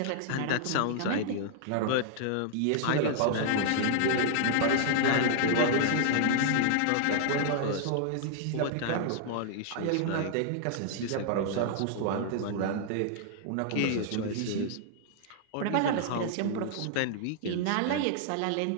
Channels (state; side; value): different; both; correlation -0.01